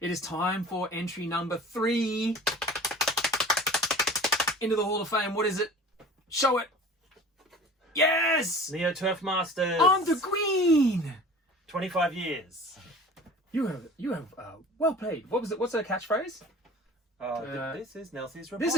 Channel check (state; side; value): normal; both; correlation 0.42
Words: It is time for entry number 3 into the Hall of Fame. What is it? Show it. Yes! Neo Turf Masters. I'm the Queen! 25 years. You have well played. What was it? What's her catchphrase? This is Nelson's report. This